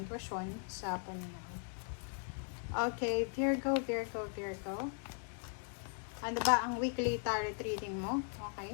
intuition sa panunaw. Okay, Virgo. Ano ba ang weekly tarot reading mo?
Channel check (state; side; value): silent; right; 52 dB below the other